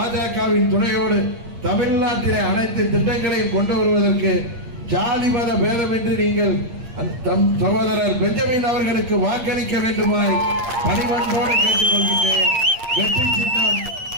துணையோடு தமிழ்நாட்டிலே அனைத்து திட்டங்களையும் கொண்டு வருவதற்கு ஜாதி மத பேதமின்றி நீங்கள் சகோதரர் பெஞ்சமின் அவர்களுக்கு வாக்களிக்க வேண்டுமாய் பணிவன்போடு கேட்டுக்கொள்கின்றேன். வெற்றி சின்னம்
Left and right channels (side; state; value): left; late; 8.6 ms